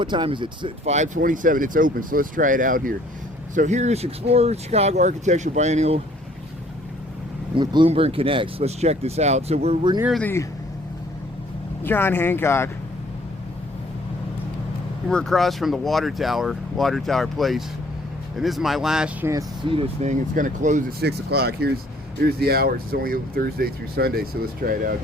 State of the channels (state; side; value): normal; both; correlation 0.59